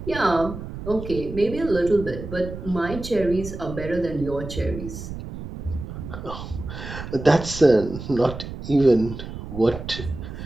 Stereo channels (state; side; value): noise; right; rumble, 10 dB below the sound